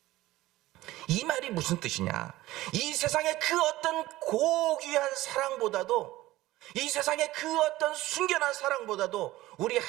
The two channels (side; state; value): left; quieter; 17.1 dB